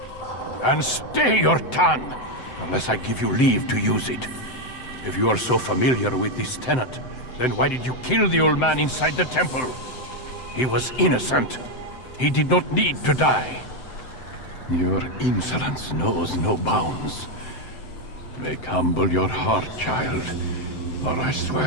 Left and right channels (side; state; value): right; late; 7.8 ms